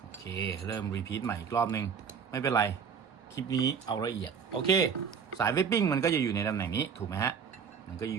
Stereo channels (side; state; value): left; quieter; 6.7 dB